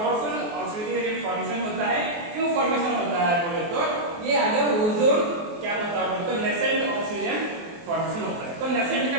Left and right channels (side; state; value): left; late; 23 ms